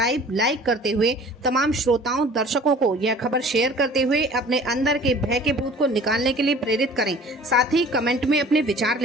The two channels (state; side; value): normal; both; correlation 0.47